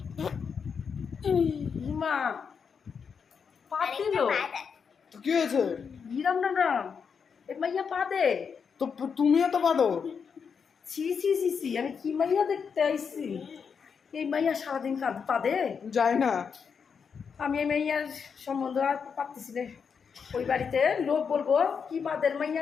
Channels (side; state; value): right; quieter; 6.3 dB